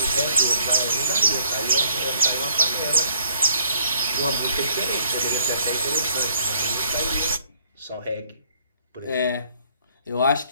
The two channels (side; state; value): both; inverted; correlation -0.64